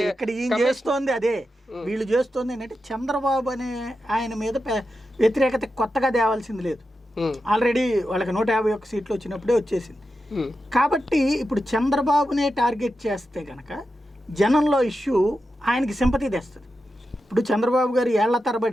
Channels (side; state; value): both; normal; correlation 0.89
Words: ఇక్కడ ఈయన చేస్తోంది అదే, వీళ్ళు చేస్తోంది ఏంటంటే చంద్రబాబు అనే ఆయన మీద వ్యతిరేకత కొత్తగా తేవాల్సింది లేదు. ఆల్రెడీ వాళ్ళకి 151 సీట్లు వచ్చినప్పుడే వచ్చేసింది. కాబట్టి ఇప్పుడు చంద్రబాబునే టార్గెట్ చేస్తే కనుక జనంలో ఇష్యూ ఆయనకి సింపతి తెస్తుంది. ఇప్పుడు చంద్రబాబు గారు ఏళ్ల